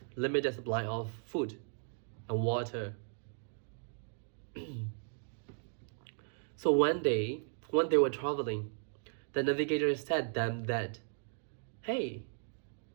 limited supply of food and water. So one day, when they were traveling, the navigator said them that, hey,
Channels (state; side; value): silent; left; 54 dB below the other